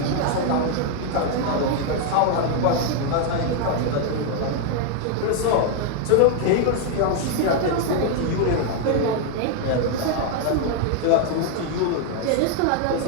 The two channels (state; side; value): different; both; correlation 0.00